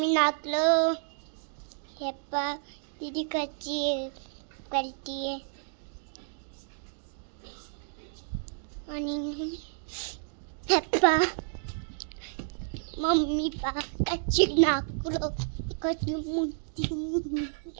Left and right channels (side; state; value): left; silent; digital silence